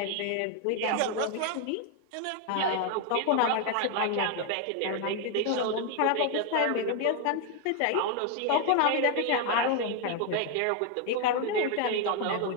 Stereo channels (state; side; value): different; both; correlation 0.01